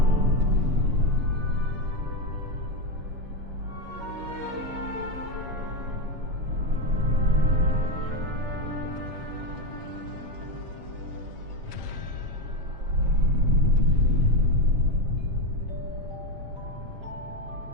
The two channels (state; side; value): late; left; 7.3 ms